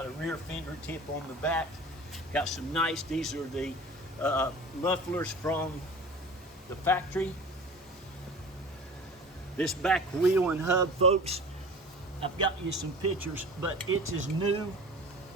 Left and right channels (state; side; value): normal; both; correlation 0.38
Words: a rear fender tip on the back. Got some nice, these are the mufflers from the factory. This back wheel and hub, folks, I've got you some pictures, but it's as new